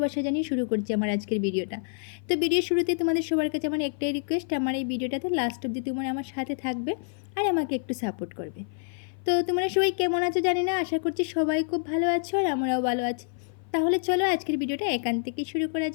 জানিয়ে শুরু করছি আমার আজকের ভিডিওটা। তো ভিডিওর শুরুতে তোমাদের সবার কাছে আমার একটাই রিকোয়েস্ট, আমার এই ভিডিওটাতে লাস্ট অবধি তোমরা আমার সাথে থাকবে আর আমাকে একটু সাপোর্ট করবে। তো তোমরা সবাই কেমন আছো জানি না, আশা করছি সবাই খুব ভালো আছো আর আমরাও ভালো আছি। তাহলে চলো আজকের ভিডিওটা এখান থেকেই শুরু করা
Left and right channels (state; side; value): silent; right; 55 dB below the other